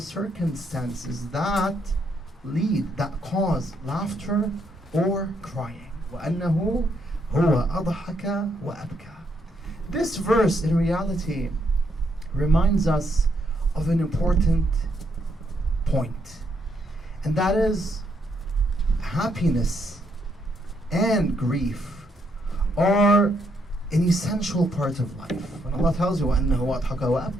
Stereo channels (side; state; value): both; normal; correlation 0.75